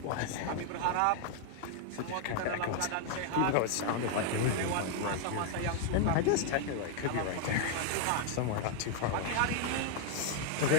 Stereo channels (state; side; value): different; both; correlation 0.00